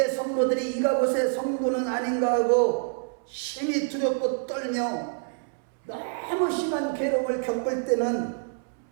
성도들이 이가봇의 성도는 아닌가 하고 심히 두렵고 떨며 너무 심한 괴로움을 겪을 때는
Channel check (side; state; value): left; silent; 60 dB below the other